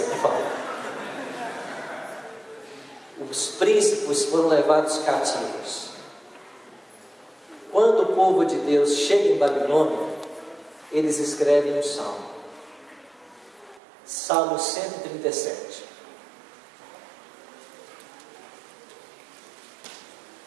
por favor. Os príncipes foram levados cativos. Quando o povo de Deus chega em Babilônia, eles escrevem um salmo. Salmo 137.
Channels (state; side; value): drops out; left; at 13.8 s